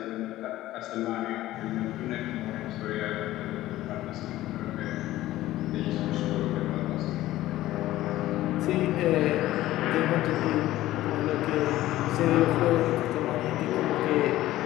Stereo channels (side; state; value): right; quieter; 15.4 dB